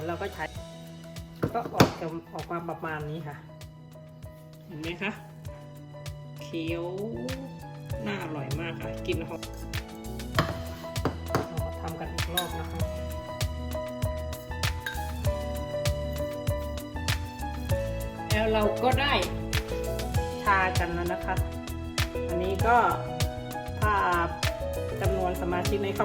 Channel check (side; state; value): both; identical; correlation 1.00